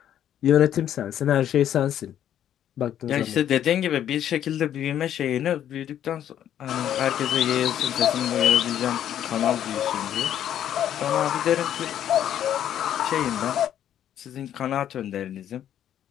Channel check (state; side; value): quieter; right; 10.5 dB